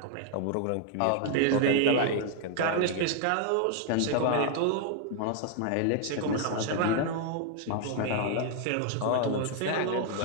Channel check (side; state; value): both; different; correlation 0.00